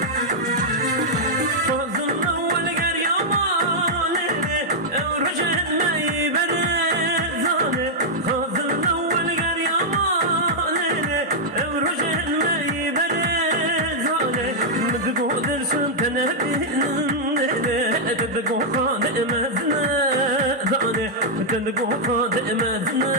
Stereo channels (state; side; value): normal; both; correlation -0.05